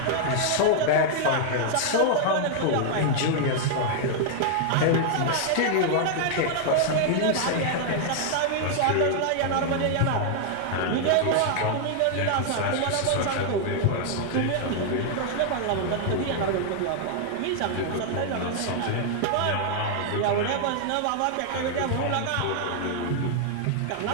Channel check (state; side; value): different; both; correlation 0.00